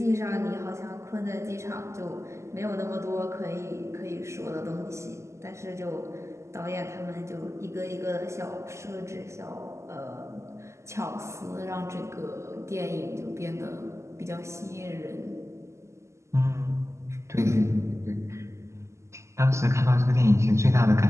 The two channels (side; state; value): left; late; 0.13 ms